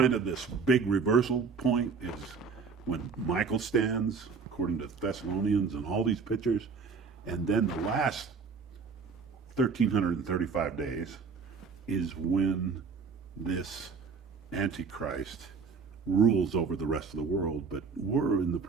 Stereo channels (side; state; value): left; quieter; 5.2 dB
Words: of this big reversal point, is when Michael stands, according to Thessalonians and all these pictures. And then the last 1,335 days is when this Antichrist rules over the rest of the world. But we're in the